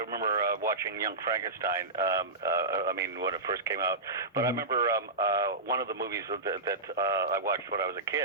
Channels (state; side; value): quieter; left; 3.2 dB